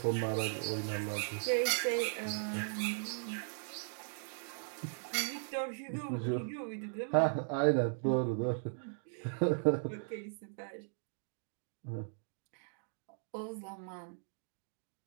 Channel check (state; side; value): silent; left; digital silence